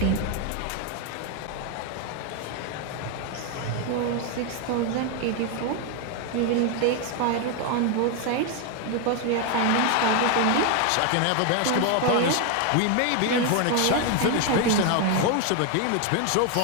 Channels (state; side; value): different; both; correlation 0.01